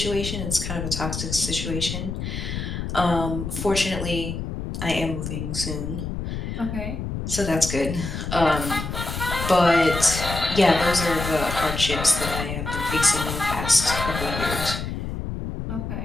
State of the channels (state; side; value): noise; left; rumble, 5 dB below the sound